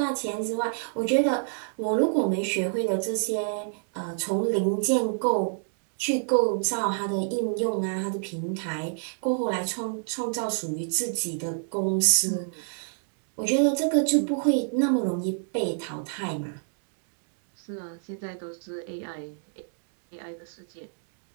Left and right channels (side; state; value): left; silent; digital silence